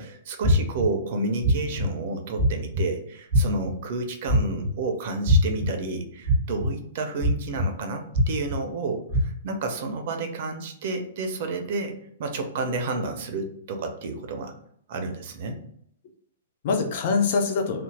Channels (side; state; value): both; inverted; correlation -0.42